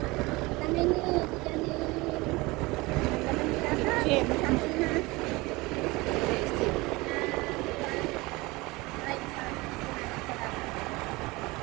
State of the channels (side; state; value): left; quieter; 22.8 dB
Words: Kami ni diyan ni Kim.